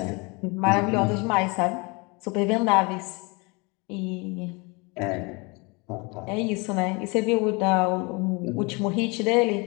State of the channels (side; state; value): right; quieter; 28.7 dB